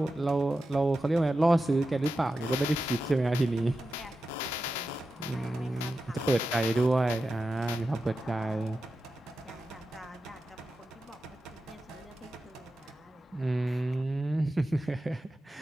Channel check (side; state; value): both; normal; correlation 0.91